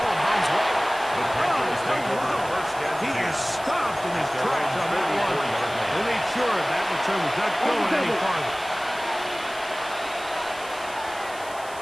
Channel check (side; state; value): right; noise; hiss, 18 dB below the sound